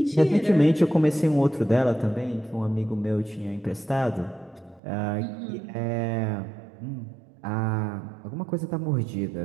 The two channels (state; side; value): drops out; left; at 4.8 s